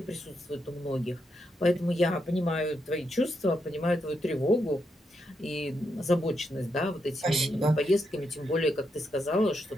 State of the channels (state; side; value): normal; both; correlation 0.82